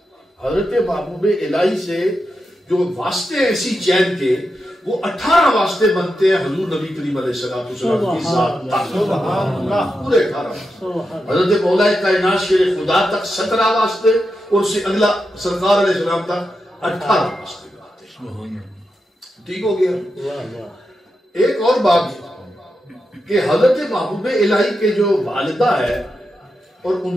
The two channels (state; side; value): normal; both; correlation 0.88